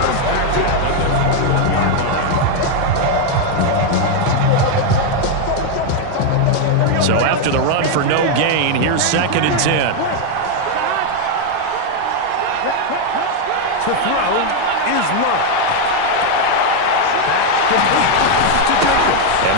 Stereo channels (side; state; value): both; different; correlation 0.01